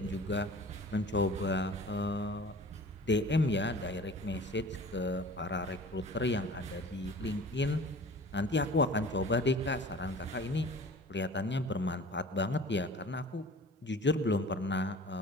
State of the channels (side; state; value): both; normal; correlation 0.43